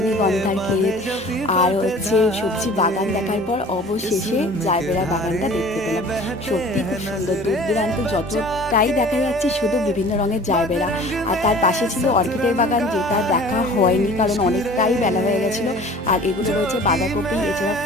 ক্ষেত আর সবজি বাগান দেখার পর অবশেষে জারবেরা বাগানটা দেখতে পেলাম। সত্যি খুব সুন্দর, দূর দূরান্ত যতটাই দেখা যাচ্ছে শুধু বিভিন্ন রঙের জারবেরা। আর তার পাশে ছিল অর্কিডের বাগান, যেটা দেখা হয়নি কারণ অনেকটাই বেলা হয়ে গেছিলো। আর এগুলো রয়েছে বাঁধাকপি, এছাড়া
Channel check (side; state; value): both; normal; correlation 0.46